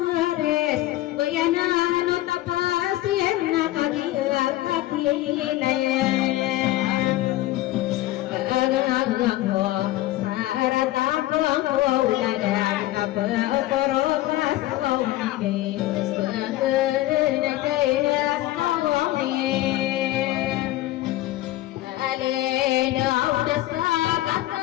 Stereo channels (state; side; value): quieter; right; 16.2 dB